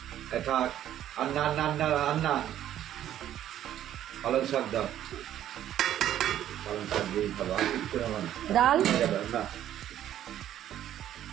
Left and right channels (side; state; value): left; quieter; 11.6 dB